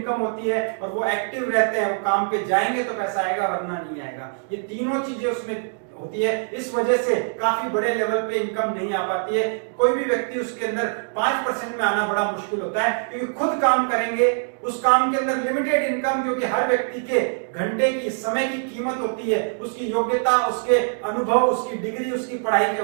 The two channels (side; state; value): left; silent; digital silence